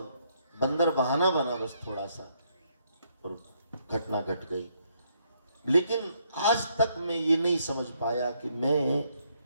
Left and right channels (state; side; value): inverted; both; correlation -0.73